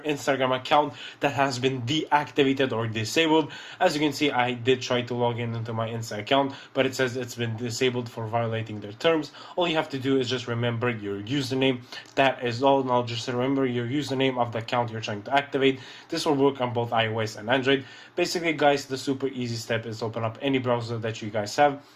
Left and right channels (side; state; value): both; identical; correlation 1.00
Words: account that has been deactivated or disabled. As you can see, I did try to log in into my Insta account, but it says it's been disabled for violating their terms. All you have to do is just remember your username. That is all. Now just remember your username of the account you're trying to activate. This will work on both iOS and Android. Basically guys, the super easy step is open up any browser that you guys have,